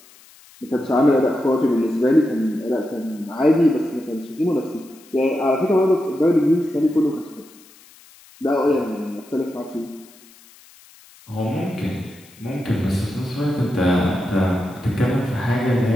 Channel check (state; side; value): noise; left; hiss, 25 dB below the sound